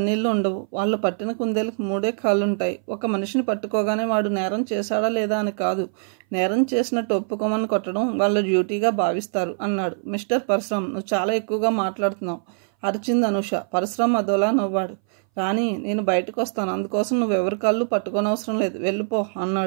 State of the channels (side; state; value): left; silent; 60 dB below the other